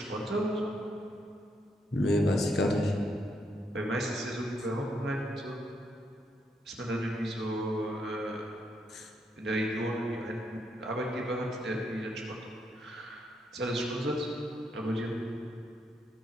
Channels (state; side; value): normal; both; correlation 0.77